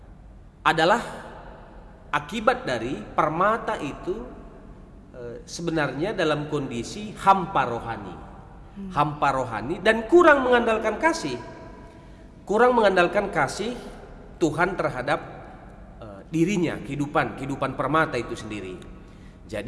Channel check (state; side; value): identical; both; correlation 1.00